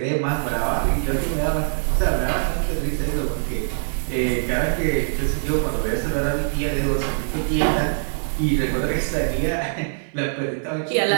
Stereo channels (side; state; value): left; silent; digital silence